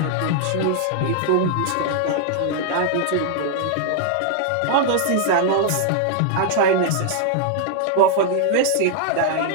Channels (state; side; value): different; both; correlation 0.00